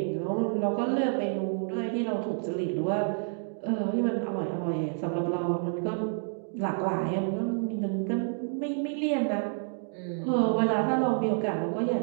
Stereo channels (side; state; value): left; silent; 59 dB below the other